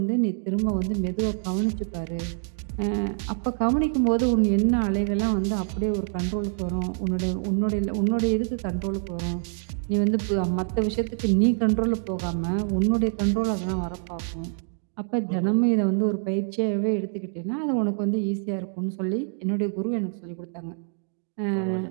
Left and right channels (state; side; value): silent; left; 59 dB below the other